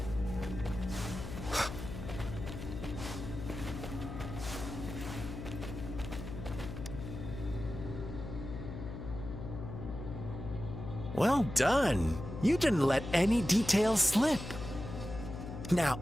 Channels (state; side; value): noise; left; hum, 8 dB below the sound